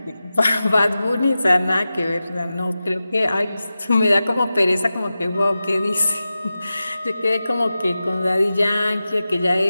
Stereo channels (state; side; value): inverted; both; correlation -0.94